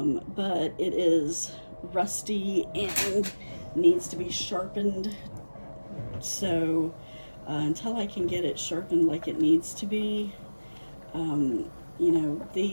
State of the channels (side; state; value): both; inverted; correlation -1.00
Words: it is rusty and needs to be sharpened. So until I can get it sharpened like it needs to be, you know,